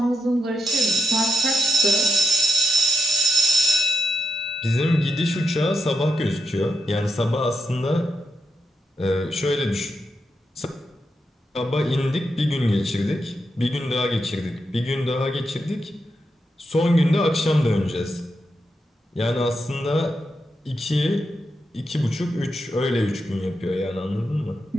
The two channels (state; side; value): normal; both; correlation 0.82